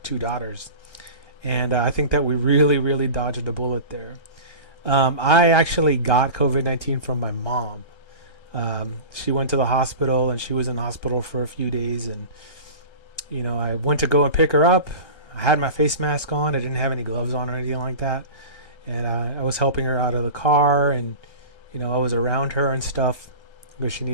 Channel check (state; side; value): late; right; 1.3 ms